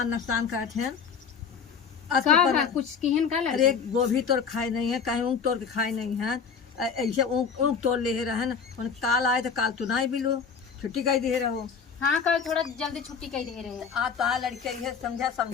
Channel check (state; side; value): quieter; right; 6.3 dB